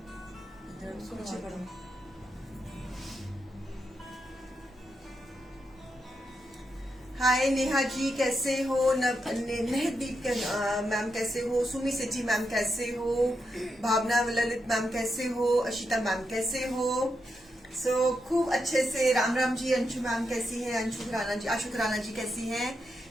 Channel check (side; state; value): both; normal; correlation 0.84